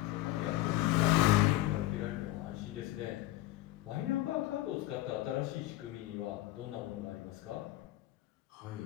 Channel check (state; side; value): quieter; right; 16.3 dB